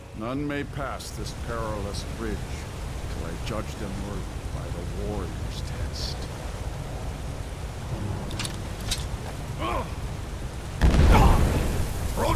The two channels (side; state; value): both; identical; correlation 1.00